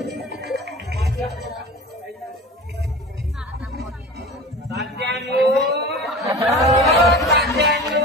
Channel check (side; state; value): both; normal; correlation 0.35